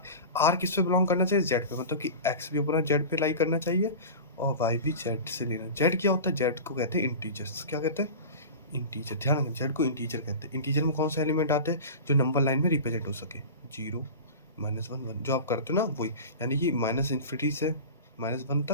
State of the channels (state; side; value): inverted; both; correlation -0.32